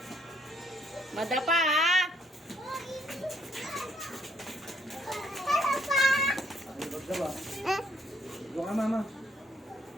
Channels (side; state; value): both; normal; correlation 0.68